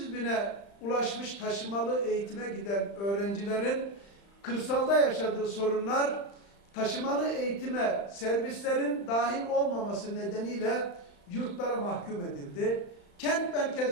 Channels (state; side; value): late; right; 35 ms